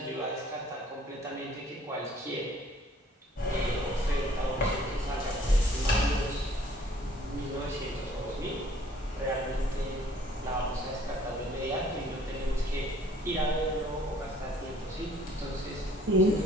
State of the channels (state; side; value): normal; both; correlation 0.58